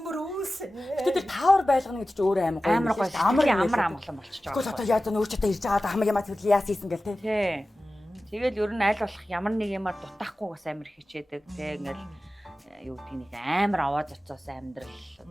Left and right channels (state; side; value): normal; both; correlation 0.96